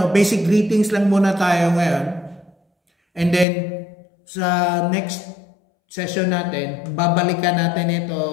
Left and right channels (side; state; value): right; drops out; at 3.5 s